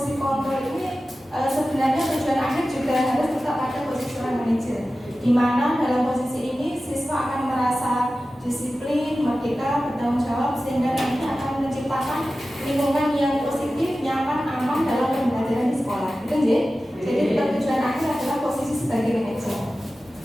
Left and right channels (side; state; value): both; normal; correlation 0.95